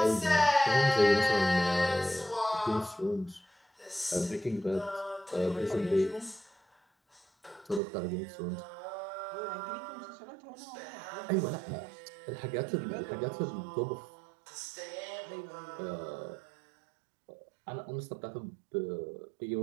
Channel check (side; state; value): left; drops out; at 7.8 s